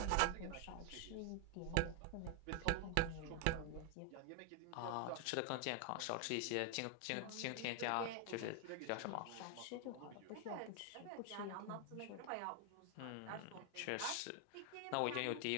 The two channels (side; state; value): both; different; correlation 0.00